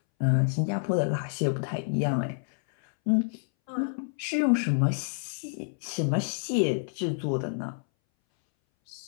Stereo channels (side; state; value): right; silent; 59 dB below the other